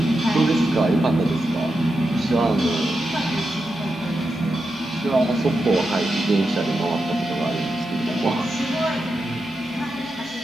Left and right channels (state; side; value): normal; both; correlation 0.88